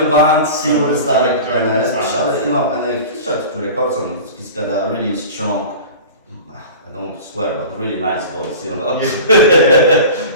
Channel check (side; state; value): both; inverted; correlation -0.36